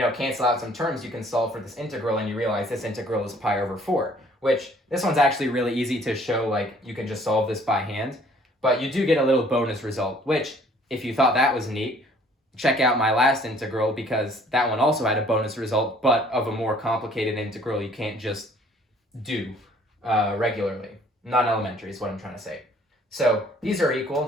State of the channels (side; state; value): both; normal; correlation 0.58